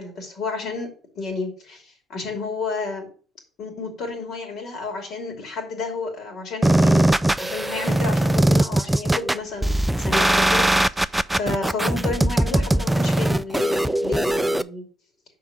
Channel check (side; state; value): both; normal; correlation 0.90